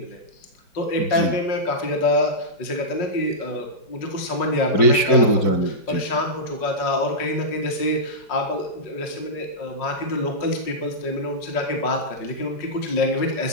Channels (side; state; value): right; late; 4.7 ms